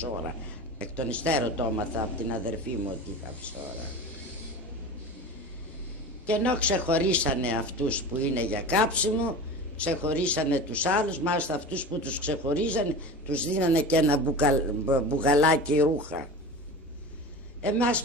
Εκ των υστέρων το έμαθα από την αδερφή μου ότι είχα ψώρα. Και ενώ ξεχωρίσανε αυτούς που είναι για κάψιμο, ξεχωρίσανε τους άλλους, μάλιστα αυτούς που τους ξεχωρίζανε, τους δίνανε και ένα μπουγαλάκι ρούχα. Εμάς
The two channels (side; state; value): both; normal; correlation 0.32